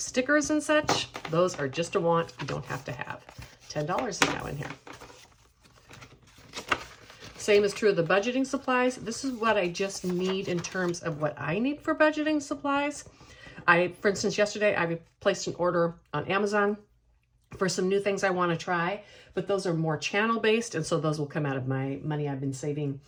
and such, those are just a want. You don't have to have. $10 is now in here. Same is true of the budgeting supplies. This is what I just need in terms of what I need for budgeting supplies. For instance, yesterday I placed an order on Amazon for some new things I want to try, but those are more channel based. And so those will come out of my money I've been saving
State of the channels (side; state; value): both; identical; correlation 1.00